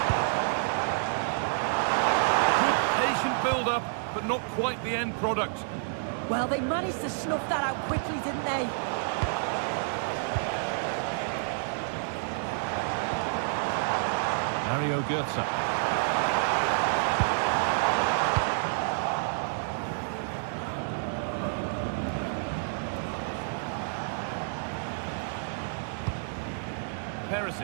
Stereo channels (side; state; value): left; silent; digital silence